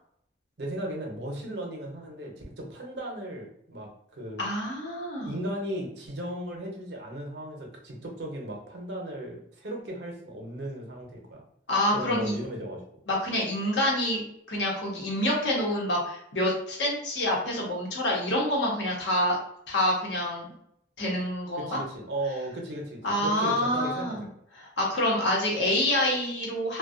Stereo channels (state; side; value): normal; both; correlation 0.06